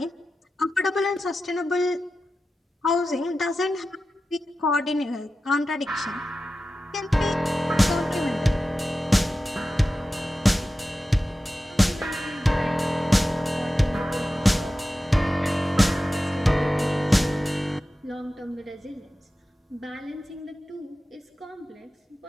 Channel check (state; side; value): normal; both; correlation 0.93